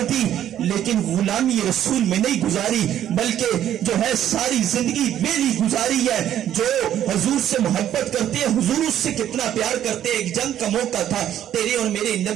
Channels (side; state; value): left; quieter; 11.1 dB